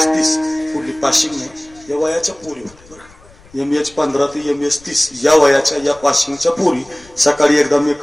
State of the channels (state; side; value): noise; left; rumble, 26 dB below the sound